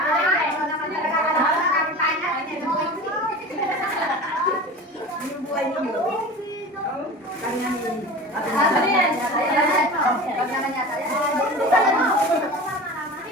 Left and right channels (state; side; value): normal; both; correlation 0.34